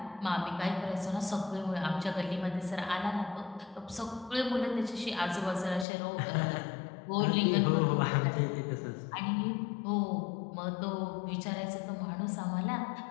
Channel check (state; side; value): drops out; right; at 5.9 s